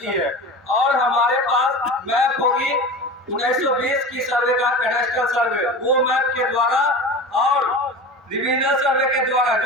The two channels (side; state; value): both; normal; correlation 0.31